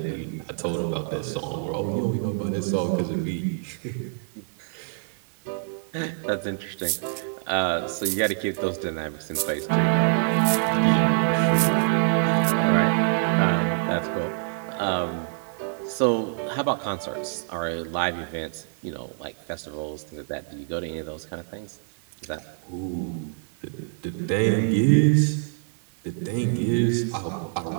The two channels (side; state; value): left; silent; digital silence